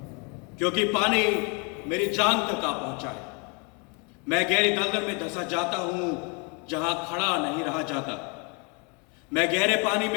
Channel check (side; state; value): right; quieter; 33.6 dB